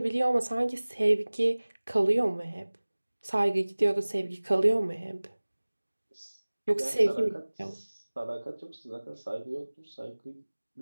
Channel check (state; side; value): inverted; both; correlation -1.00